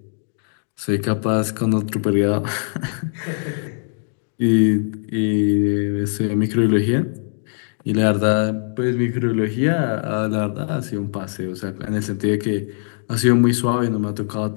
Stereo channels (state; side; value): silent; right; digital silence